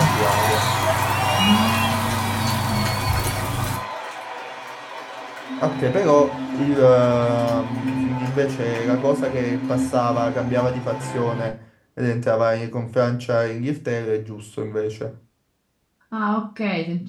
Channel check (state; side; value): identical; both; correlation 1.00